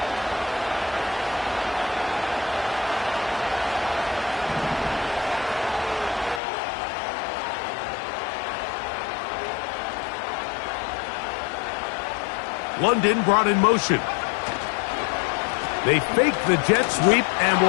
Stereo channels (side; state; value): right; drops out; at 6.4 s